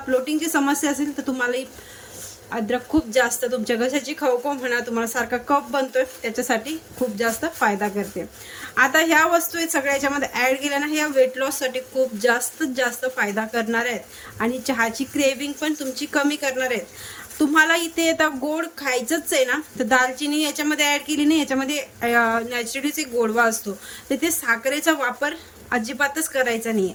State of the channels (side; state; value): both; identical; correlation 1.00